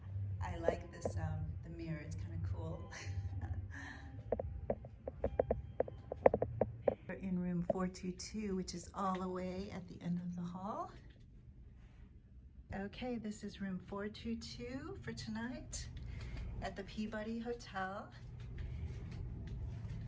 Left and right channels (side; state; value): both; identical; correlation 1.00